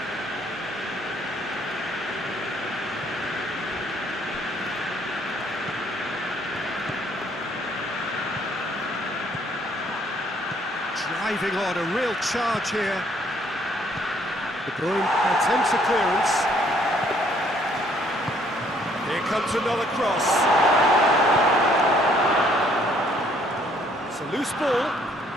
Driving on, a real charge here. De Bruyne attempts a clearance. Here comes another cross. It's a loose ball.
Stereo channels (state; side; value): normal; both; correlation 0.64